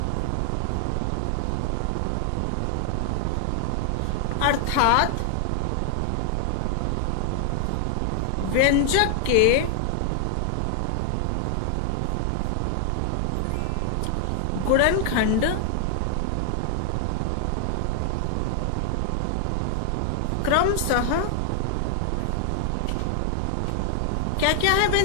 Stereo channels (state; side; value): different; both; correlation 0.00